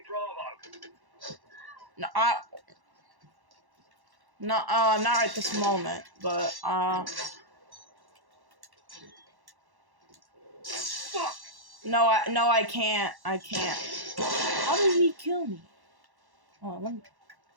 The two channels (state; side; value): late; left; 1.1 ms